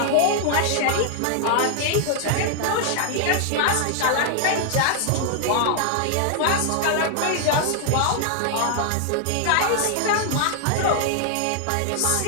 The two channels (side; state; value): both; different; correlation 0.00